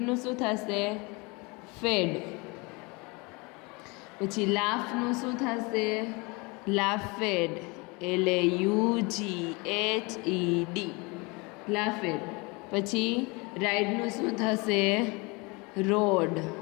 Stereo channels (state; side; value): quieter; right; 27.4 dB